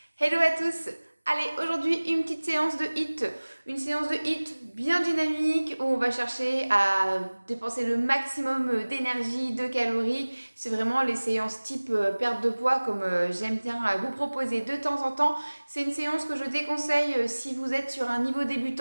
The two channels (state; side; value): inverted; both; correlation -1.00